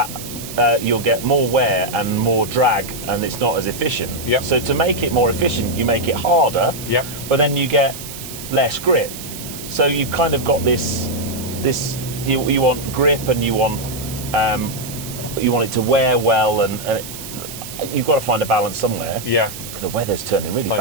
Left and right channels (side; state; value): right; noise; hiss, 11 dB below the sound